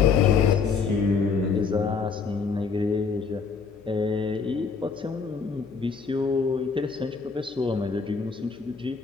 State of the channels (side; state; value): right; quieter; 5.3 dB